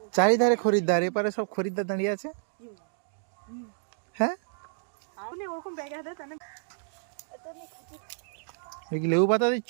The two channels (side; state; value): left; silent; digital silence